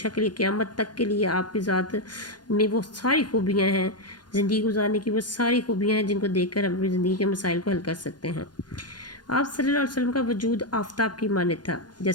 کے لیے، قیامت تک کے لیے آپ کی ذات میں وہ ساری خوبیاں ہیں، زندگی گزارنے کی وہ ساری خوبیاں ہیں جن کو دیکھ کر ہم اپنی زندگی کے مسائل کو حل کر سکتے ہیں۔ آپ صلی اللہ علیہ وسلم کا وجود آفتاب کی مانند تھا۔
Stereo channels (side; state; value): right; late; 0.70 ms